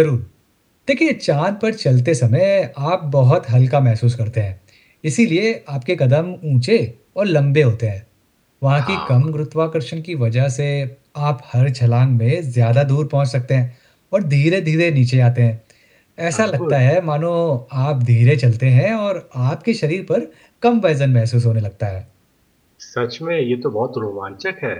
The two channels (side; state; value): both; identical; correlation 1.00